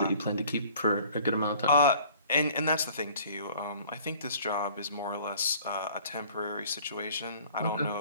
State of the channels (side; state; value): both; inverted; correlation -0.50